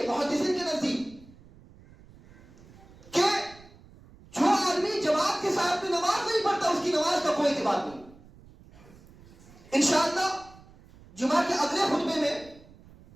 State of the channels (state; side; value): noise; right; rumble, 23 dB below the sound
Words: محدثین کے نزدیک، کہ جو آدمی جماعت کے ساتھ میں نماز نہیں پڑھتا اس کی نماز کا کوئی اعتبار نہیں۔ انشاءاللہ جمعہ کے اگلے خطبے میں